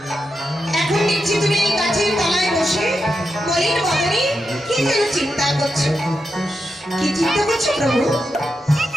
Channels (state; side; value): normal; both; correlation 0.86